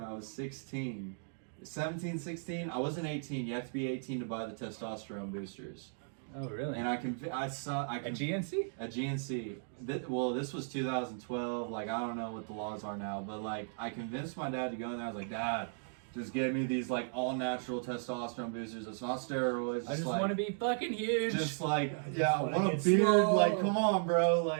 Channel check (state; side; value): silent; left; digital silence